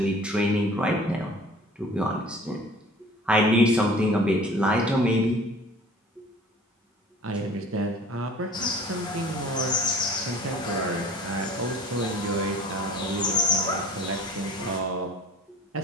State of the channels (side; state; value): both; normal; correlation 0.46